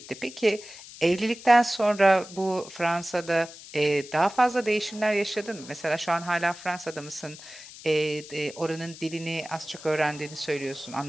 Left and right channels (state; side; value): noise; left; hiss, 16 dB below the sound